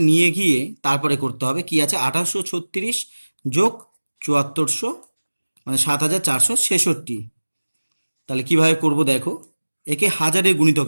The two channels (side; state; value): both; inverted; correlation -1.00